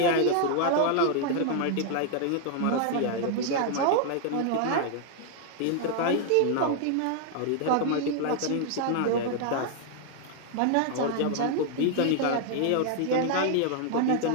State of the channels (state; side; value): different; both; correlation 0.00